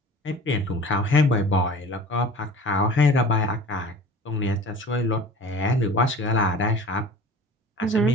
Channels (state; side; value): normal; both; correlation 0.41